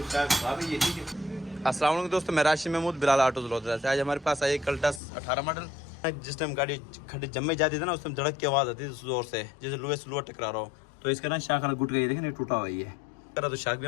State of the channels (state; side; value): drops out; right; at 5.0 s